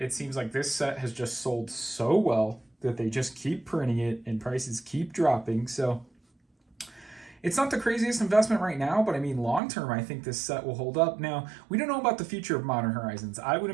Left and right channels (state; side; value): drops out; left; at 9.6 s